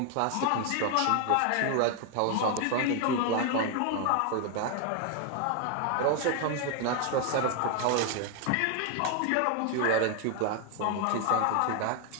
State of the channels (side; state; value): both; different; correlation 0.01